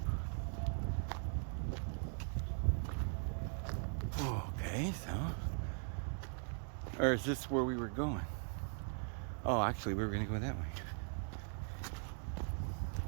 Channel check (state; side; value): silent; left; 51 dB below the other